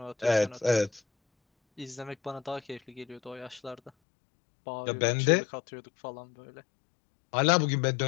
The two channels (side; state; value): right; drops out; at 3.9 s